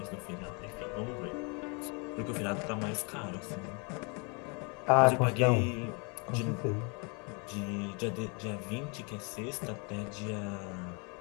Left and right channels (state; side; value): quieter; right; 33.2 dB